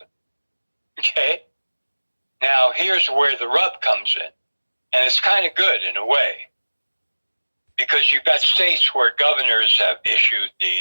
Okay? Now, here's where the rub comes in. And it's kind of good in a way. Because you've got states where governors have issued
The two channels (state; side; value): inverted; both; correlation -1.00